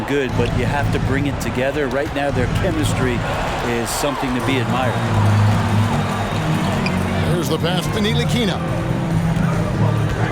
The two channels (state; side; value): identical; both; correlation 1.00